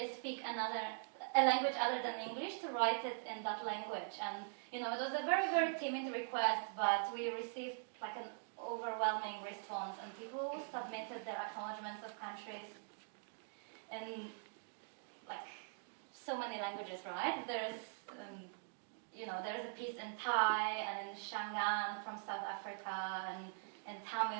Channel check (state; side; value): silent; left; digital silence